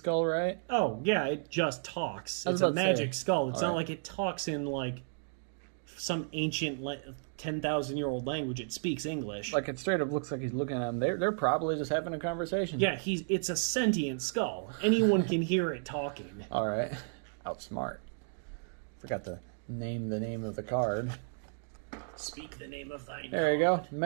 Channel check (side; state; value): left; silent; digital silence